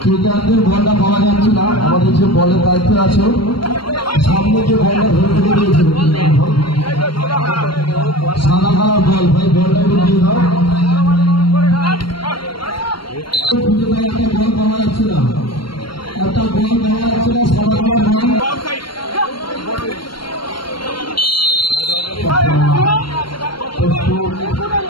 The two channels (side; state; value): right; late; 0.72 ms